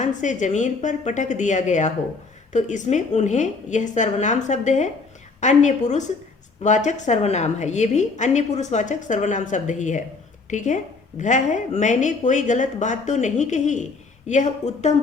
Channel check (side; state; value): right; quieter; 4.1 dB